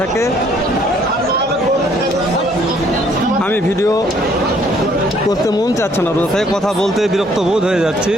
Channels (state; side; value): normal; both; correlation 0.64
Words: আমি ভিডিও করতে মন চাচ্ছে না, রোজ থেকে কথা বলতে বিরক্ত বোধ হয়ে যাচ্ছি।